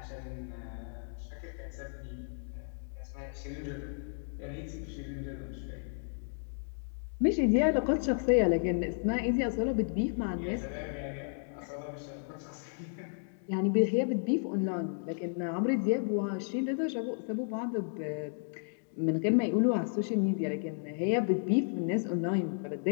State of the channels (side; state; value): right; silent; digital silence